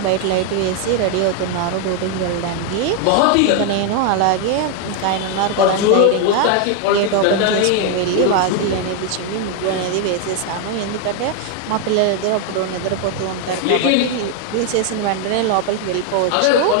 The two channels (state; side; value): different; both; correlation 0.01